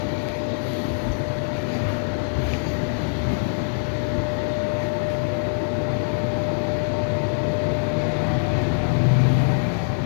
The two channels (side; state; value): right; silent; 63 dB below the other